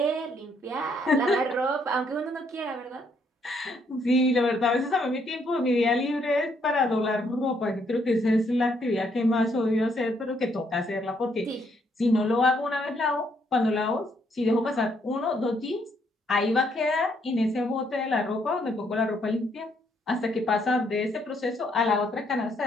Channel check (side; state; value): both; normal; correlation 0.71